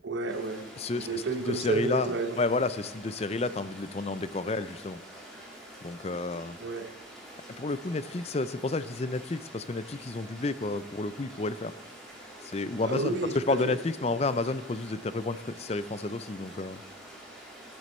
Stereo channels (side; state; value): both; normal; correlation 0.34